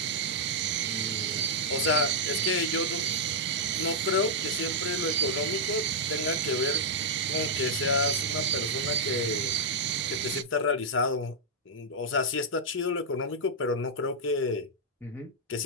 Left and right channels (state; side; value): normal; both; correlation -0.07